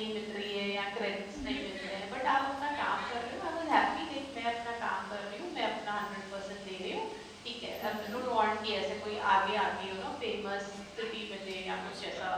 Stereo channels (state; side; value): identical; both; correlation 1.00